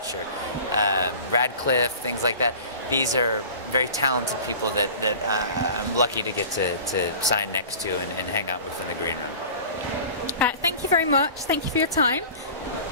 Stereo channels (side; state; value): both; inverted; correlation -0.40